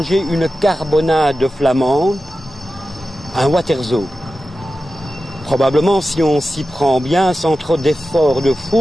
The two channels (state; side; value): normal; both; correlation 0.93